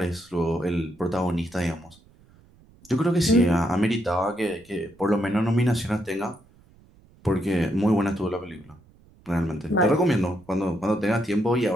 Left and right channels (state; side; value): noise; right; rumble, 28 dB below the sound